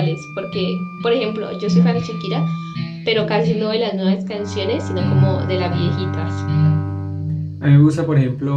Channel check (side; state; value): both; identical; correlation 1.00